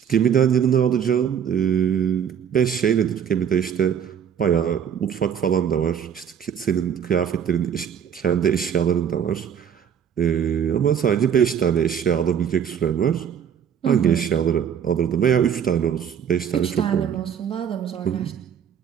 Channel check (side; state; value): left; quieter; 8.3 dB